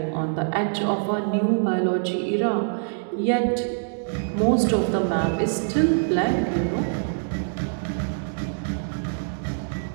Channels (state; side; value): silent; left; digital silence